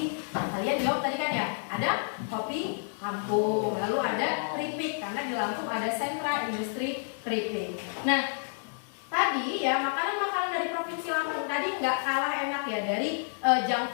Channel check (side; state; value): right; silent; digital silence